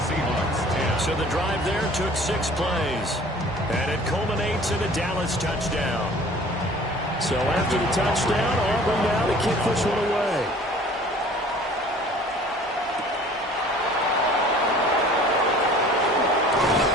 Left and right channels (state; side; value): normal; both; correlation 0.49